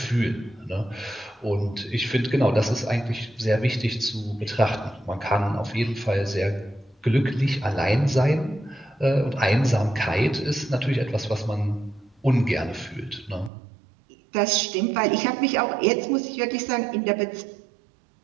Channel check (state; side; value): drops out; left; at 13.5 s